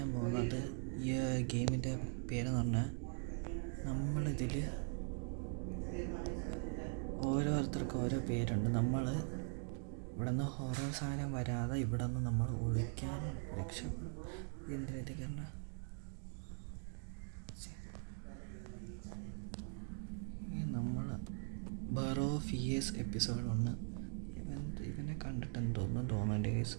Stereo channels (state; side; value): silent; left; 50 dB below the other